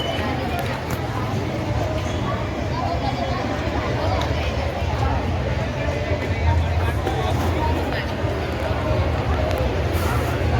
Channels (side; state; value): both; identical; correlation 1.00